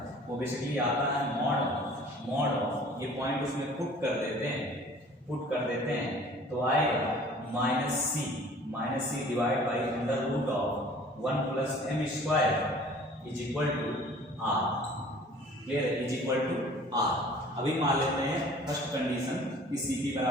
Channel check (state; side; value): normal; both; correlation 0.49